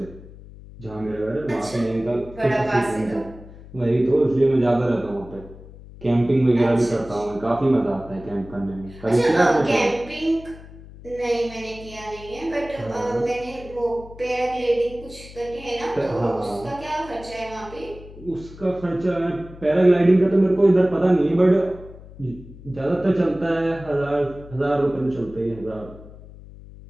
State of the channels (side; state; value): left; noise; hum, 18 dB below the sound